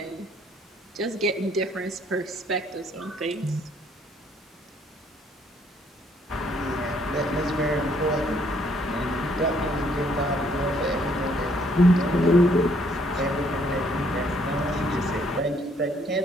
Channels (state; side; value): normal; both; correlation 0.66